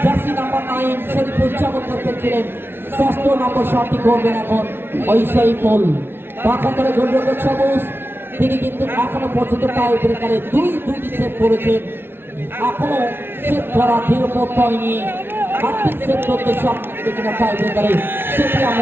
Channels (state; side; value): late; left; 0.11 ms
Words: জার্সি নাম্বার 9 শরীফুল চমৎকার খেলছিলেন। ষষ্ঠ নম্বর শটটি করবেন এখন ওই শরীফুল। পাখান্তরে গোলরক্ষক সবুজ তিনি কিন্তু এখনো পর্যন্ত টাই ব্রেকারে দুইটি সেভ করেছেন। এখনো সেভ করা ধীরপথ হয়নি, আর্থিক সেভ করতে সক্ষম কিনা টাই ব্রেকারে সেটি